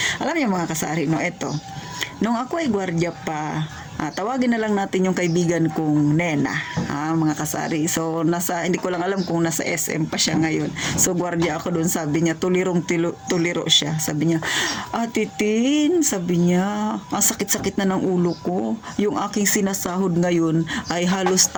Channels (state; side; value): identical; both; correlation 1.00